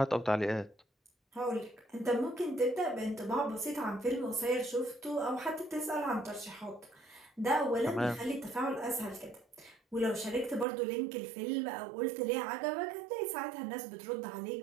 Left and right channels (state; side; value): drops out; left; at 10.7 s